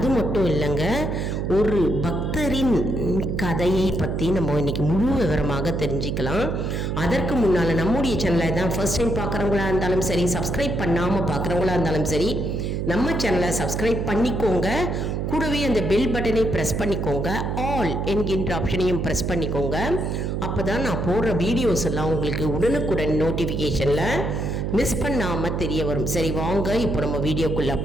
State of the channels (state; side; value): noise; right; hum, 1 dB below the sound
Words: மட்டும் இல்லைங்க, ஒரு பக்தரின் கதையை பற்றி நம்ம இன்னைக்கு முழு விவரமாக தெரிஞ்சுக்கலாம். அதற்கு முன்னால் நம்முடைய சேனலை தான் ஃபர்ஸ்ட் டைம் பார்க்குறவங்களா இருந்தாலும் சரி, சப்ஸ்கிரைப் பண்ணாமல் பார்க்குறவங்களா இருந்தாலும் சரி, நம்ம சேனலை சப்ஸ்கிரைப் பண்ணிக்கோங்க. கூடவே அந்த பெல் பட்டனை ப்ரெஸ் பண்ணிக்கோங்க. ஆல் என்கின்ற ஆப்ஷனையும் ப்ரெஸ் பண்ணிக்கோங்க. அப்போ தான் நான் போடுற வீடியோஸ் எல்லாம் உங்களுக்கு உடனுக்குடன் நோட்டிஃபிகேஷனில் மிஸ் பண்ணாமல் தெரிய வரும். சரி, வாங்க இப்போ நம்ம வீடியோக்குள்ளே